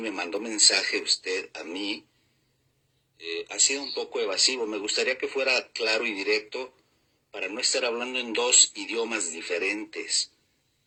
me mandó mensaje usted a mí, ha sido un poco evasivo. Me gustaría que fuera claro y directo para no estar hablando en 2 idiomas diferentes.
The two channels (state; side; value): identical; both; correlation 1.00